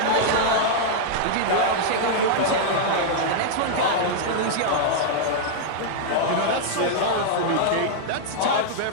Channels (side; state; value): both; different; correlation -0.01